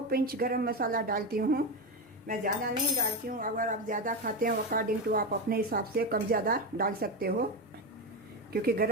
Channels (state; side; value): normal; both; correlation 0.15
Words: पिंच गरम मसाला डालती हूँ। मैं ज़्यादा नहीं डालती हूँ। अगर आप ज़्यादा खाते हैं अकॉर्डिंग टू आप अपने हिसाब से कम ज़्यादा डाल सकते हो, क्योंकि